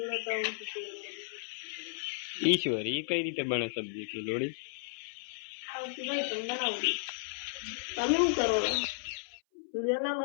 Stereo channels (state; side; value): silent; right; 55 dB below the other